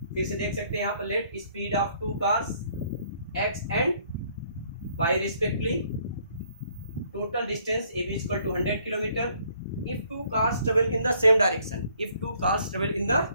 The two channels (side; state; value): both; inverted; correlation -0.64